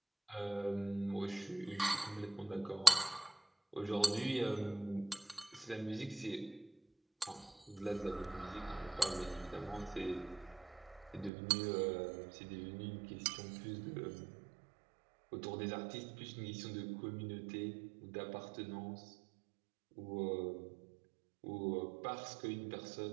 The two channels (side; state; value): left; drops out; at 11.3 s